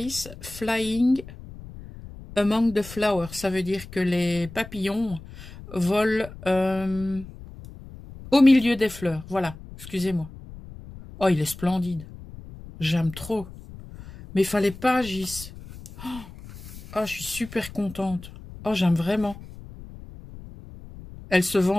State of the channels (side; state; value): left; noise; rumble, 16 dB below the sound